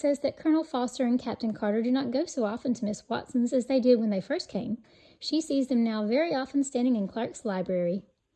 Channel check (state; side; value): identical; both; correlation 1.00